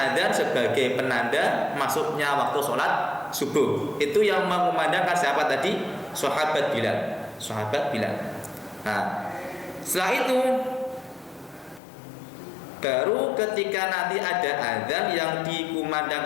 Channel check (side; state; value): right; drops out; at 11.8 s